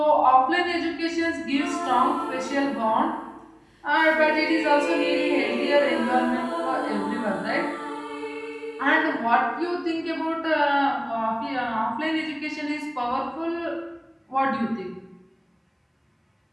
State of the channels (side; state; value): both; identical; correlation 1.00